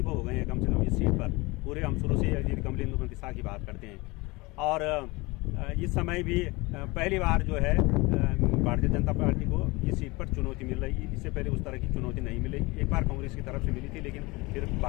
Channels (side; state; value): right; quieter; 23.9 dB